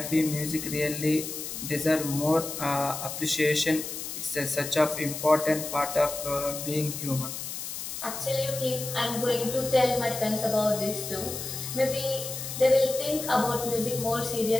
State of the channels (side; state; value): left; noise; hiss, 7 dB below the sound